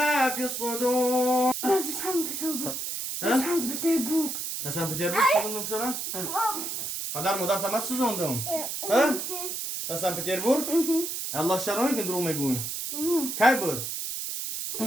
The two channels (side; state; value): right; noise; hiss, 4 dB below the sound